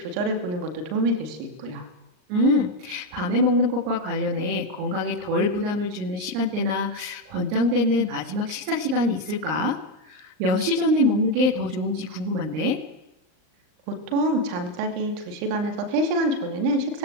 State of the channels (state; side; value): late; left; 39 ms